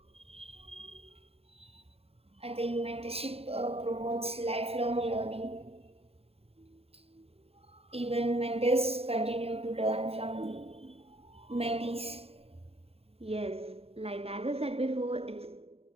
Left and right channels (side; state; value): left; late; 0.29 ms